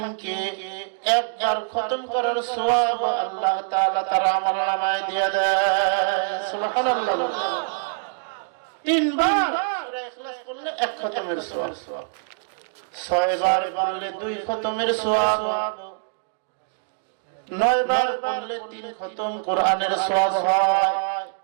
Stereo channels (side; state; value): left; silent; digital silence